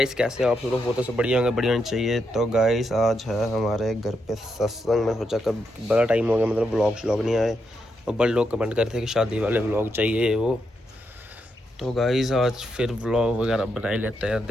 कैसे आप लोग? वो तो सब बढ़िया होंगे, बढ़िया होनी चाहिए। तो गाइस आज है हमारे घर पे सत्संग। मैं सोचा कब बड़ा टाइम हो गया, मतलब व्लॉग नहीं आए, और बड़े लोग कमेंट करते हैं कि शादी वाले व्लॉग चाहिए वो। तो गाइस आज फिर व्लॉग वगैरह बना ही लेते हैं।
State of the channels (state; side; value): normal; both; correlation 0.82